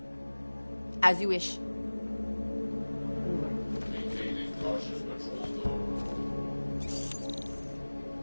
As you wish.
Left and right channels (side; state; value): both; inverted; correlation -1.00